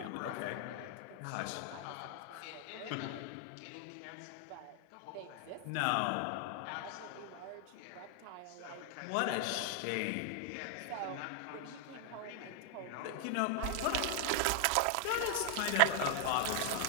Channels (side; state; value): both; different; correlation 0.00